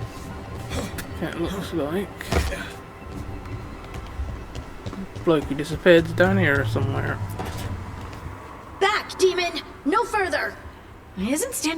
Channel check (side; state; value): both; identical; correlation 1.00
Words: It looks like Blokey disappeared down here somewhere. Back, demon! No further! Isn't